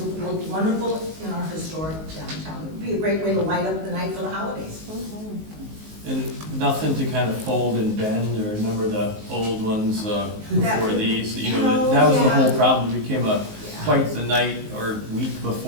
it will look wonderful in our historic downtown. It would be a great way to light up the night for the holidays. And nothing to kind of fold and bend, or remember the old ones before these? You know, that was the whole problem. It became quite the night or week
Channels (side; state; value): left; late; 19 ms